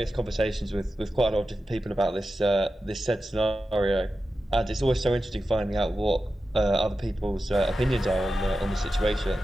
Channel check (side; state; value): both; normal; correlation 0.92